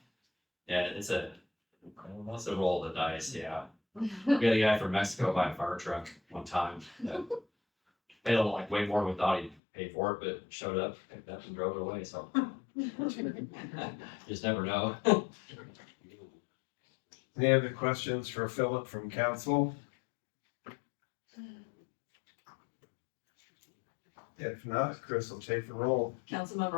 yeah, it's a roll of the dice, yeah. We had a guy from Mexico buy a fire truck one time, that paid like way more than we thought he'd pay for it, but showed up, picked up and drove it away, so. Just never know. Any other questions for Philip from council? If not, Chris will take the roll.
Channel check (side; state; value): right; drops out; at 9.6 s